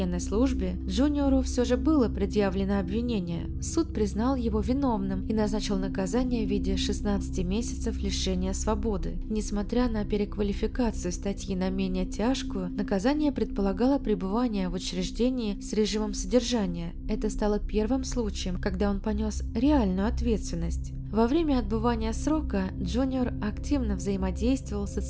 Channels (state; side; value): identical; both; correlation 1.00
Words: службе, Джуниору все же было предъявлено обвинение. Суд признал его виновным и назначил наказание в виде 16 месяцев лишения свободы. Несмотря на переквалификацию статьи на менее тяжкую, наказание предполагало пребывание в учреждении с режимом содержания. Это стало первым случаем, когда он понес реальную ответственность. Во время отбывания срока Джуниор активно взаимодействовал с